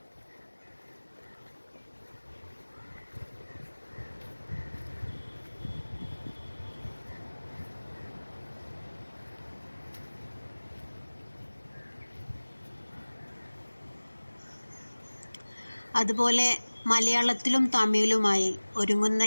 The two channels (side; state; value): both; inverted; correlation -1.00